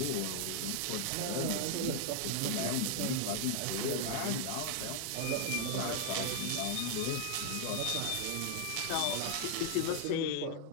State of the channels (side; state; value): both; different; correlation 0.00